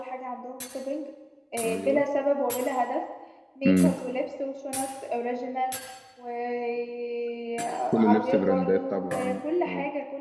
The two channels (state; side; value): identical; both; correlation 1.00